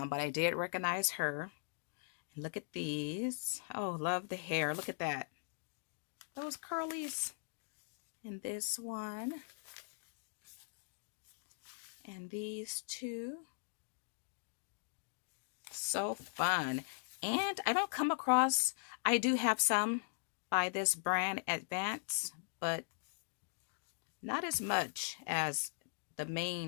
but I did recognize her. And look at these. Oh, love the hair. Look at that. Those curlies. And this one. And these two. So fun. And I don't come across, I do have some by this brand Advance, but not as much as the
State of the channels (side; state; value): right; silent; digital silence